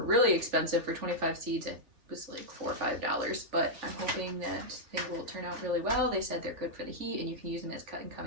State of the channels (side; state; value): left; late; 3.5 ms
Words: really expensive for 25 seeds. It was like $4 or $5, but I'm hoping that they will turn out really well. They said they're good for the heat, and you can use them as cut and come